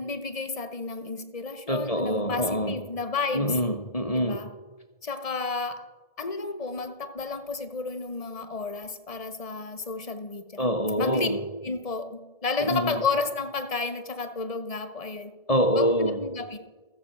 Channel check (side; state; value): right; late; 1.7 ms